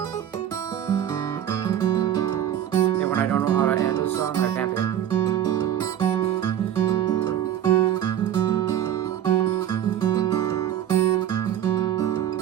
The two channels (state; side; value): quieter; left; 10.7 dB